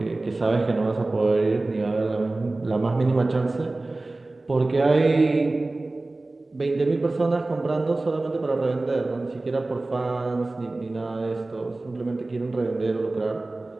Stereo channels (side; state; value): left; quieter; 3.0 dB